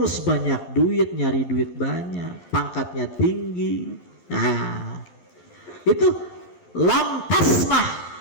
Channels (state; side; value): late; right; 11 ms